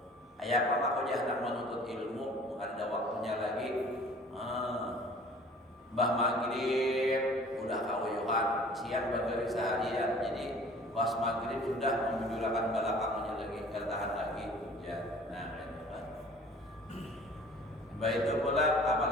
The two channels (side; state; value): both; normal; correlation 0.49